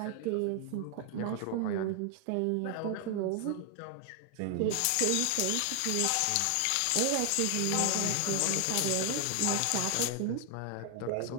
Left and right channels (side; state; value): both; different; correlation 0.00